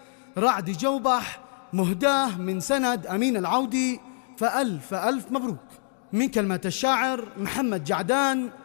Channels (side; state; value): right; silent; 61 dB below the other